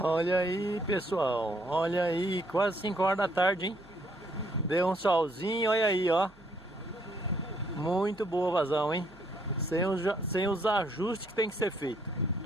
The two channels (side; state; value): right; noise; hum, 26 dB below the sound